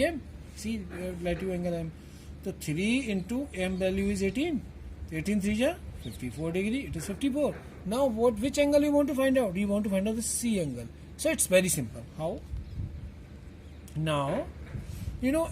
See, relative angle m. So 3 into m value is 18. 18 3 is 54 degree. It is 54. Now which angle you want to find out? You want to find out the C angle. So it's very simple. How? Now,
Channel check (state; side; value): identical; both; correlation 1.00